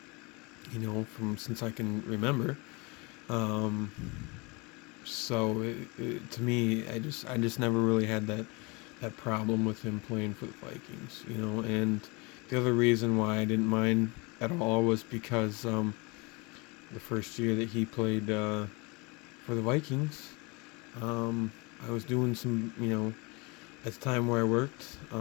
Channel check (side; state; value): right; quieter; 27.7 dB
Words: From since I can remember. Um, so to me, I just never really had that problem with him playing for the Vikings. And the other reason why I didn't mind at all was because the first year that he played for the Vikings, I was doing some at the time where I worked,